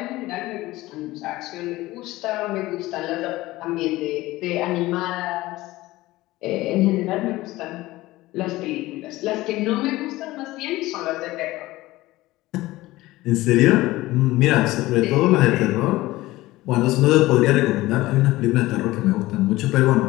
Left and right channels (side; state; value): right; quieter; 18.2 dB